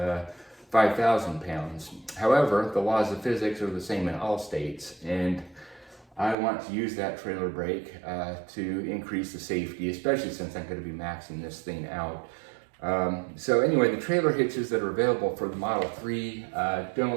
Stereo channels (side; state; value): left; drops out; at 6.4 s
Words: 5,000 pounds. However, the laws of physics are the same in all states, and I want to use that trailer brake to increase the safety, especially since I'm going to be maxing this thing out. So anyway, the trailer hitches that are available for the Model 3